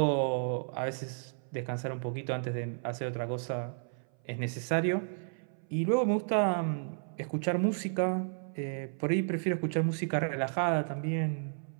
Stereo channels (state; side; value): silent; left; 56 dB below the other